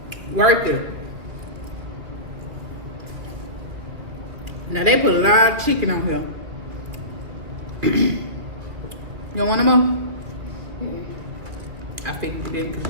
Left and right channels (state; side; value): late; left; 2.1 ms